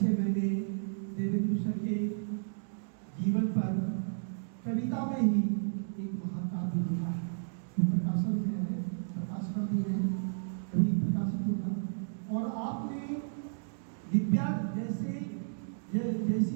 मैंने देवेंद्र सर के जीवन पर कविता में ही एक महाकाव्य लिखा है जो प्रकाशन में है, प्रकाशन भी है, कभी प्रकाशित होगा। और आपने दिव्या जैसी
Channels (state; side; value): silent; left; digital silence